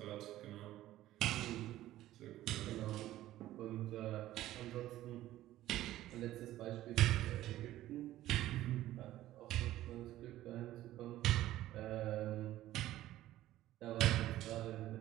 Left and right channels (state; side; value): quieter; left; 14.6 dB